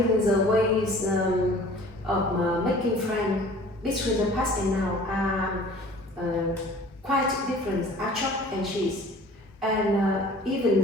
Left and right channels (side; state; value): both; normal; correlation 0.48